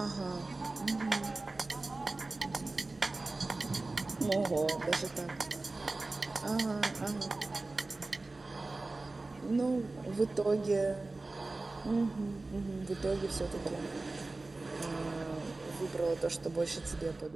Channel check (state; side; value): quieter; left; 3.2 dB